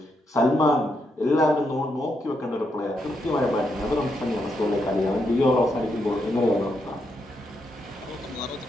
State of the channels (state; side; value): normal; both; correlation 0.80